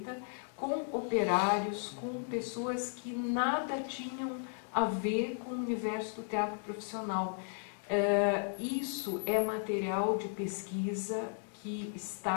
com operários, com pessoas que nada tinham a ver com o universo do teatro profissional. Isso é material de pesquisa que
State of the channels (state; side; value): silent; right; 54 dB below the other